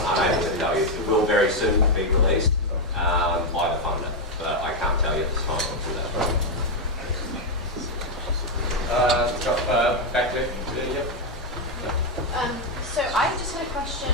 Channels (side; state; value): both; normal; correlation 0.03